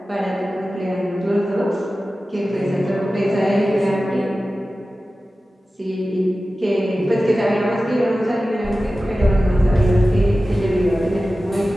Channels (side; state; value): both; normal; correlation 0.95